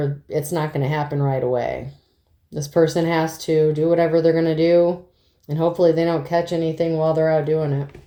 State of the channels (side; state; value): both; identical; correlation 1.00